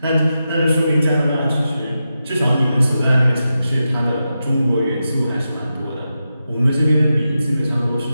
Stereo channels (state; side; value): inverted; both; correlation -0.89